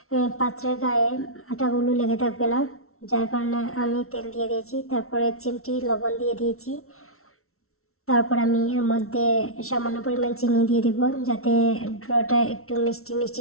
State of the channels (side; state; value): right; late; 0.63 ms